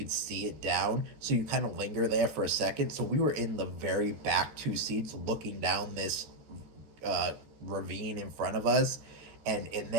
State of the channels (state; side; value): late; left; 14 ms